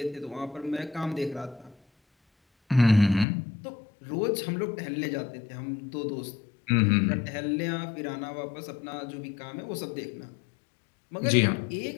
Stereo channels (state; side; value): drops out; right; at 3.2 s